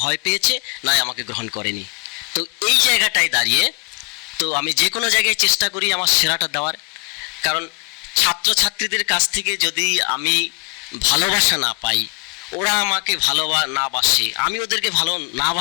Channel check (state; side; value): quieter; right; 36.7 dB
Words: ভয় পেয়েছে, নয় আমাকে গ্রহণ করেনি। তো এই জায়গাটায় দাঁড়িয়ে তো আমি যে কোনো জায়গায় চেষ্টা করি আমার সেরাটা দেওয়ার। কারণ ছাত্রছাত্রীদের কাছ থেকে যদি আমি ভালোবাসা না পাই, ওরা আমাকে না বাসে, আমি ওদেরকে ভালো না